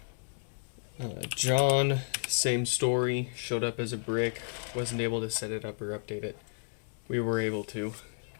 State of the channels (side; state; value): right; silent; digital silence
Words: John, same story, showed up as a brick, wasn't able to set it up or update it. We were able to.